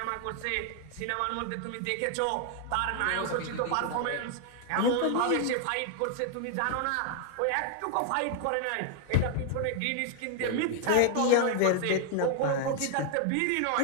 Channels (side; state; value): both; different; correlation 0.00